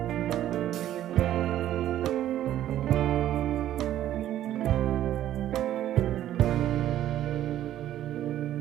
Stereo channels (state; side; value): quieter; left; 12.3 dB